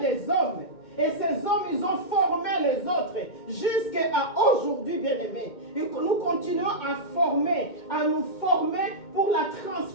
hommes. Et ces hommes, ils ont formé les autres. Jusqu'à aujourd'hui, bien-aimés. Nous continuons à nous former pour la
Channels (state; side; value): late; right; 2.2 ms